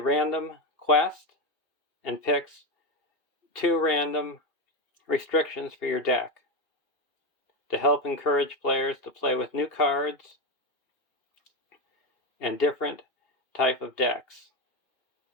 quest and picks 2 random restrictions for your deck to help encourage players to play with new cards and different type of decks.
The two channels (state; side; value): late; right; 2.5 ms